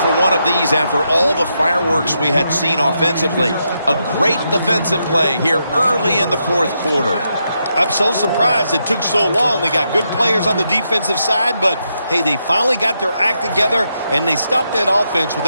one of these after all the fireworks we had seen offensively. A great defensive play here early in the fourth quarter. I'm so surprised it took so long. They got good players on the defensive side, but, hey, they finally got their act together, and they stopped that offense with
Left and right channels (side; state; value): both; inverted; correlation -0.82